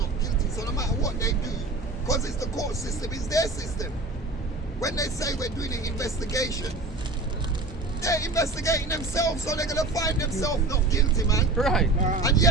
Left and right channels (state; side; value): quieter; left; 3.2 dB